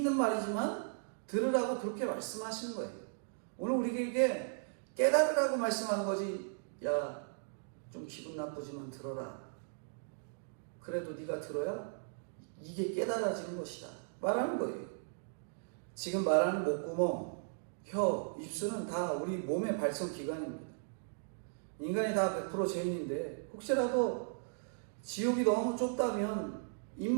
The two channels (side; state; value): left; silent; digital silence